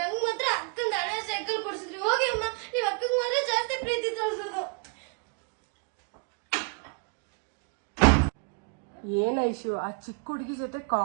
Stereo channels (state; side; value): quieter; left; 36.9 dB